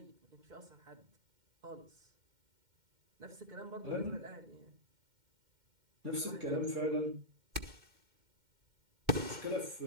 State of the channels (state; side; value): late; left; 2.1 ms